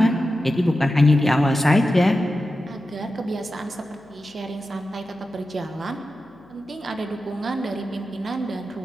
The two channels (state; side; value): noise; left; hum, 28 dB below the sound